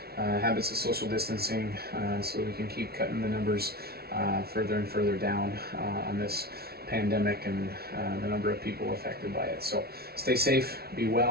habits of social distancing so we can keep cutting the numbers further and further down on this pandemic and the number of people affected by it. So stay safe, be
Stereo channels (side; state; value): left; late; 0.45 ms